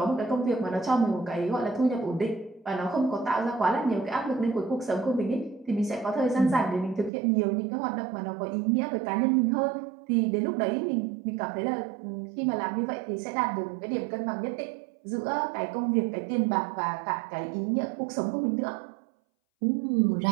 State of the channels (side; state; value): left; drops out; at 7.1 s